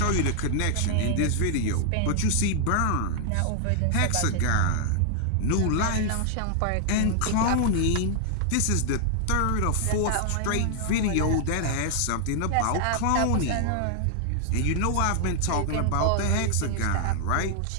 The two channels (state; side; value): different; both; correlation 0.00